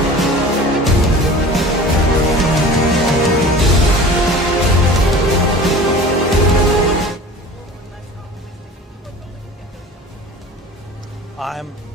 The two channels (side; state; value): both; normal; correlation 0.40